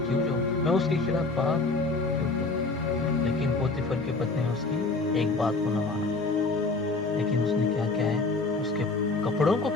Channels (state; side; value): quieter; right; 3.6 dB